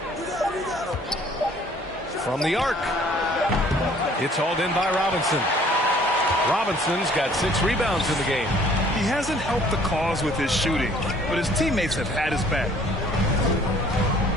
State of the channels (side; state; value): both; normal; correlation 0.57